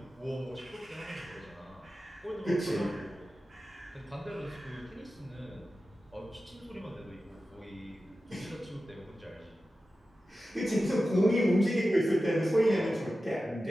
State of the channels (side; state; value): both; normal; correlation 0.94